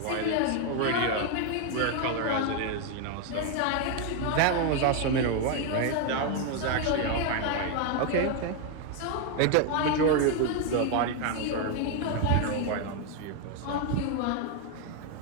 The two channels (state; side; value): different; both; correlation 0.01